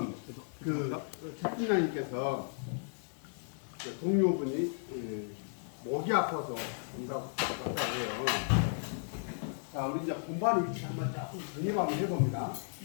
그 채팅장님께서 동료분이 목이 아파서 온다고 해요. 자, 우리 이제 공부하는 위치 한번 조금 정립 한번 해봅니다.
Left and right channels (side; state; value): right; silent; digital silence